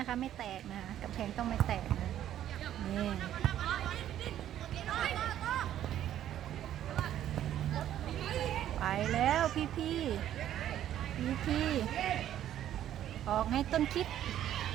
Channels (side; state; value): left; quieter; 11.5 dB